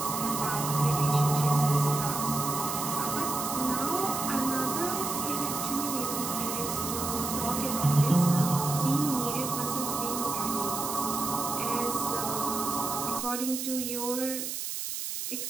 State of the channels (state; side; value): noise; right; hiss, 4 dB below the sound